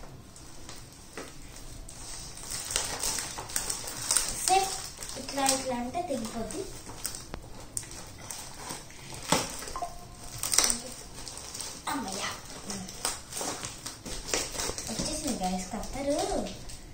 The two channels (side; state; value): both; identical; correlation 1.00